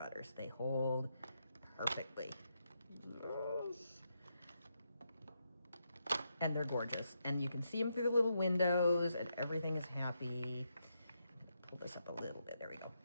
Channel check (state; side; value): inverted; both; correlation -0.81